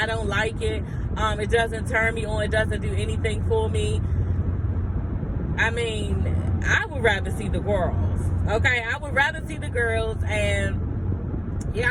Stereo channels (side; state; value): both; identical; correlation 1.00